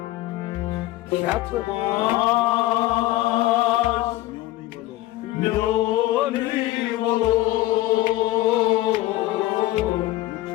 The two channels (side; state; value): right; quieter; 16.6 dB